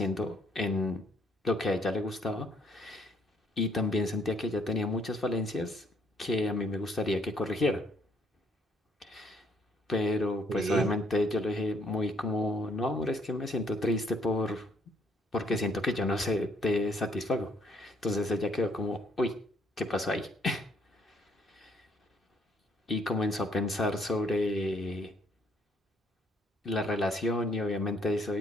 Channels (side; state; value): both; normal; correlation 0.66